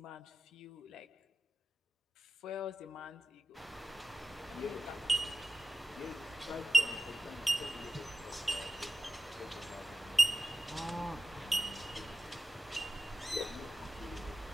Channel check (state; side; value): normal; both; correlation 0.89